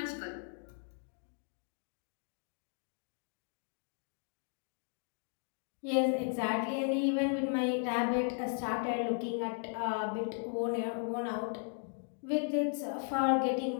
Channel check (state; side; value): silent; right; 54 dB below the other